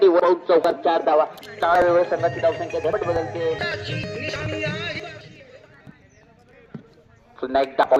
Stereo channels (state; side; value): identical; both; correlation 1.00